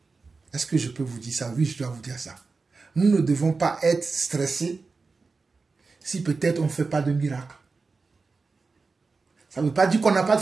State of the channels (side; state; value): left; quieter; 4.2 dB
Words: est-ce que je peux vous dire ça? Oui, je dois vous dire ça. Nous ne devons pas être stressés si peut-être on ne fait pas de miracle. Ça ne veut pas dire qu'on n'a pas de